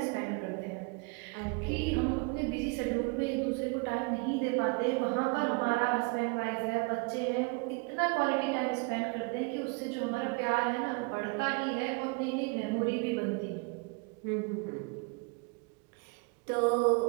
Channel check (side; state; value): left; quieter; 30.7 dB